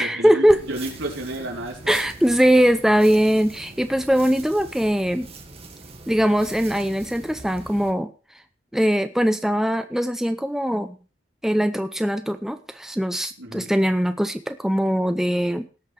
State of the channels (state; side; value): normal; both; correlation 0.95